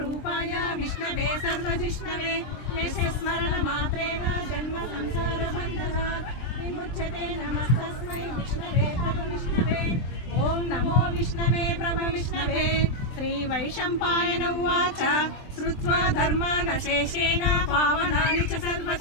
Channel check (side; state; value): right; late; 23 ms